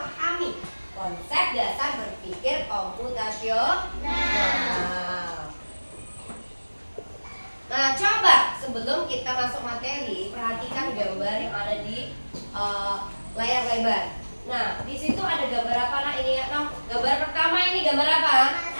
konsep dasar berpikir komputasional. Nah, coba sebelum kita masuk materi, perhatikan gambar yang ada di layar lebar. Nah, di situ ada gambar apa, Nak? Ini ya, gambar pertama ini gambar apa?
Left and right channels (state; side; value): inverted; both; correlation -1.00